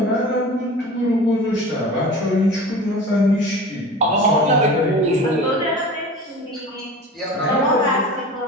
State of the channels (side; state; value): both; normal; correlation 0.36